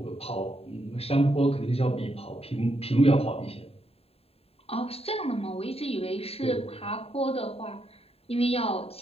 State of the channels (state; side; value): late; right; 0.29 ms